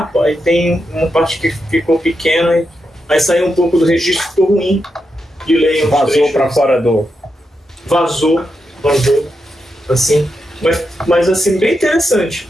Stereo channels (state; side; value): normal; both; correlation 0.86